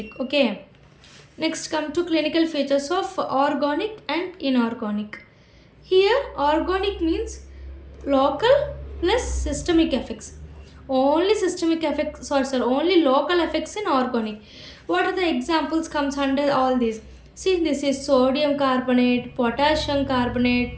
Okay. Next, come to clinical features of organic and inorganic. Here, organic means local plus systemic effects. Only systemic effects, only local effects in organic. What are the examples comes under all these? See, this is sodium carbonate, potassium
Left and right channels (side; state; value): both; identical; correlation 1.00